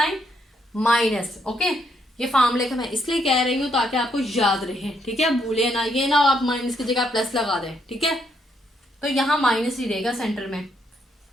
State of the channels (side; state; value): both; normal; correlation 0.75